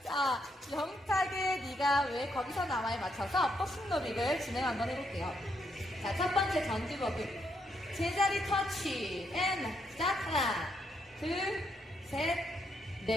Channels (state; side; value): normal; both; correlation 0.77